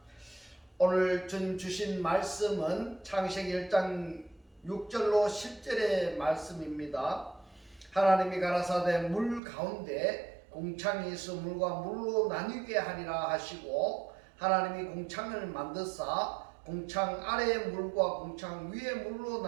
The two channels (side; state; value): left; drops out; at 9.4 s